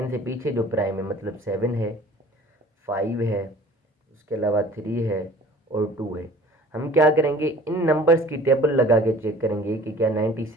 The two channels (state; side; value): normal; both; correlation 0.48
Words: से पीछे जो प्राइम है मतलब 7 है, 5 है, उसके अलावा 3 है और 2 है। हम क्या करेंगे, इन नंबर्स की टेबल लगा के चेक करेंगे कि क्या